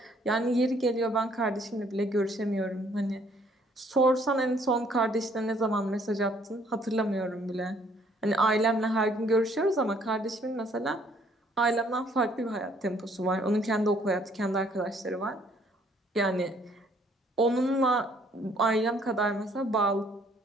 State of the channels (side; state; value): both; normal; correlation 0.63